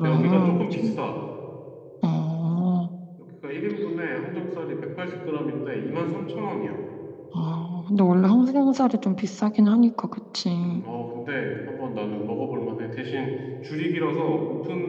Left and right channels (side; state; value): both; identical; correlation 1.00